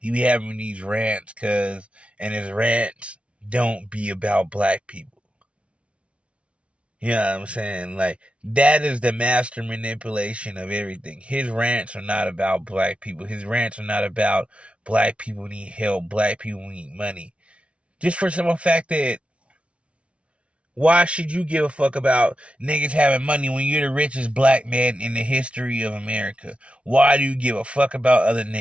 having these rants, and his rants don't be about black people. You know what I'm saying? Like, that is the master manipulation of everything. His rants are not about black people. His rants are not about black people need help, black people need money. Just for simple fact that why should you give a fuck about niggas having money when you're the richest black man in the history of America? Why do you give a fuck about other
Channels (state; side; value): late; left; 0.061 ms